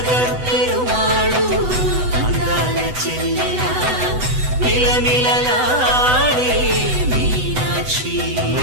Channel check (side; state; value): left; late; 8.0 ms